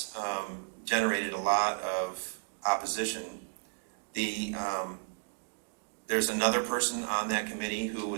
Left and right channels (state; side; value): silent; left; 56 dB below the other